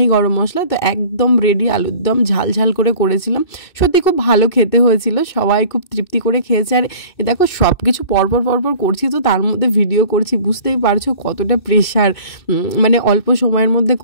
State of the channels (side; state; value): right; late; 2.6 ms